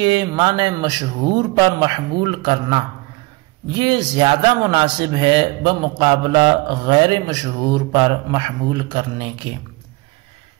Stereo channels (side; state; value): left; quieter; 23.7 dB